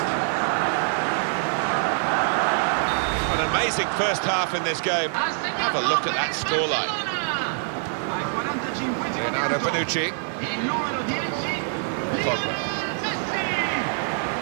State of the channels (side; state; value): left; silent; 62 dB below the other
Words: An amazing first half in this game. Have a look at that scoreline. Leonardo Bonucci. Pogba.